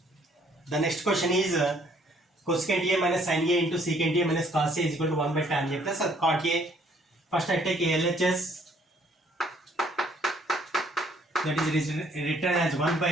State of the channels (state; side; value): normal; both; correlation 0.63